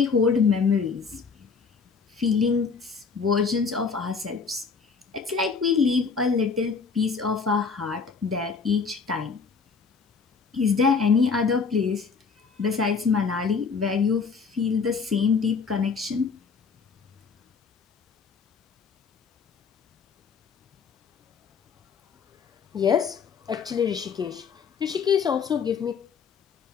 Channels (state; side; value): quieter; right; 5.4 dB